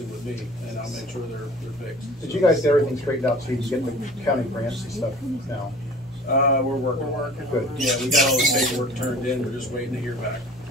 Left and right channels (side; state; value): right; noise; hum, 26 dB below the sound